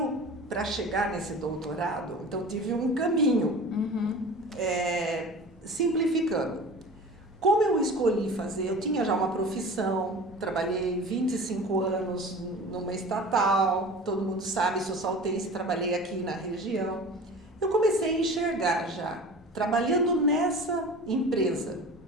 para chegar nesse doutorado, então tive um caminho. Simplificando, como eu escolhi fazer, eu tinha já uma profissão, trabalhei 25 anos numa estatal, todo mundo sabe, sou saltense, trabalhei aqui na região. Eu comecei a enxergar já, trabalhando nessa empresa,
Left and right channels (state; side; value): normal; both; correlation 0.38